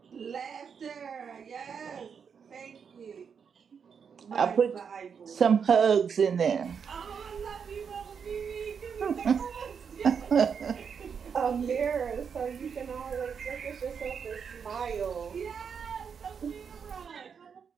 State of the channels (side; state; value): left; quieter; 6.6 dB